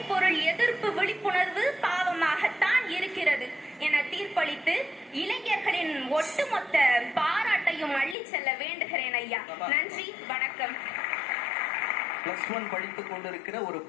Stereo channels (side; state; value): right; drops out; at 8.2 s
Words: பொருள் எதிர்ப்பு விழிப்புணர்வு பாவமாகத்தான் இருக்கிறது என தீர்ப்பளித்து இளைஞர்களின் ஒட்டுமொத்த பாராட்டையும் அள்ளி செல்ல வேண்டுகிறேன் ஐயா. நன்றி, வணக்கம். +1 படித்துக் கொண்டிருக்கிற ஒரு